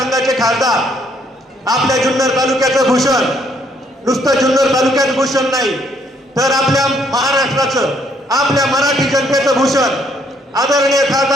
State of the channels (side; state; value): both; normal; correlation 0.68